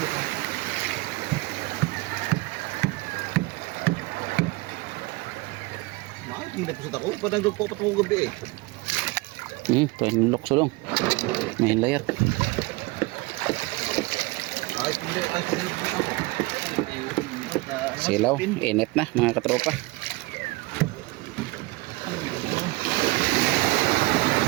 Hindi na pusat ako. Padang po patungong gabi eh. Ito yung lukso dong. May layar. Ay, hindi ako. Silaw, init na mga katropa.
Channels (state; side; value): quieter; left; 23.2 dB